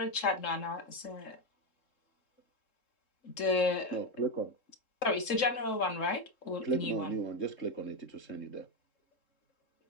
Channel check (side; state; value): right; late; 3.7 ms